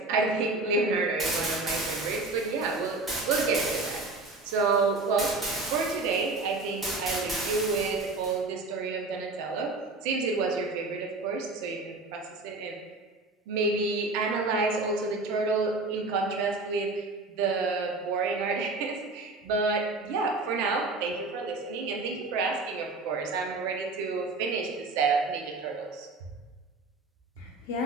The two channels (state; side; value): quieter; left; 3.3 dB